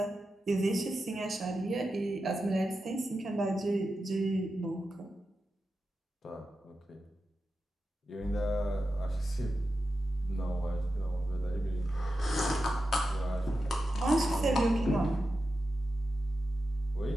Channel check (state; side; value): normal; both; correlation 0.91